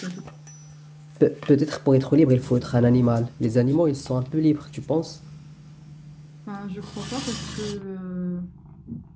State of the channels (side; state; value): both; identical; correlation 1.00